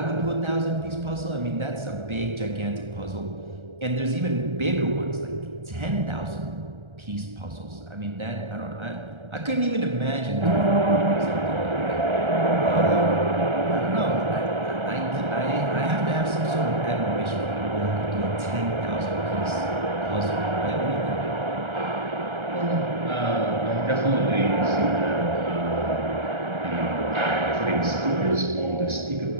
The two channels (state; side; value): late; left; 1.3 ms